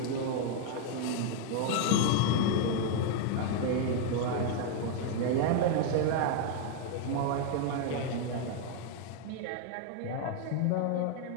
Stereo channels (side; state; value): both; different; correlation 0.00